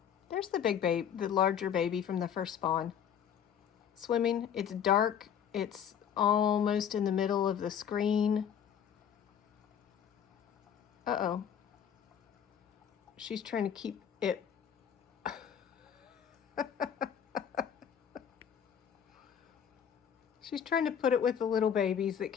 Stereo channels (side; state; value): right; quieter; 8.6 dB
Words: There's the big baby, the larger baby from the first spawn. Swimming. It's dark. It's almost in the middle of the screen. Uh-oh. She's trying to keep it. She's trying to put it with the little babies that